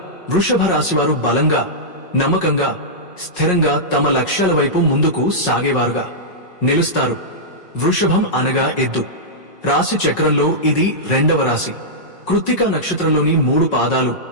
వృషభ రాశివారు బలంగా, నమ్మకంగా, స్థిరంగా తమ లక్ష్యాల వైపు ముందుకు సాగేవారుగా నిలుస్తారు. వృషభం అనగా ఎద్దు. రాశి చక్రంలో ఇది 2వ రాశి. కృత్తిక నక్షత్రంలోని 3 పాదాలు,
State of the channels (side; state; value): right; late; 5.5 ms